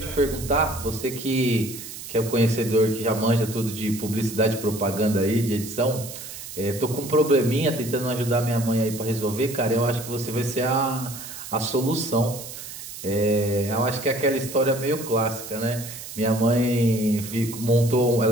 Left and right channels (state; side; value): noise; right; hiss, 11 dB below the sound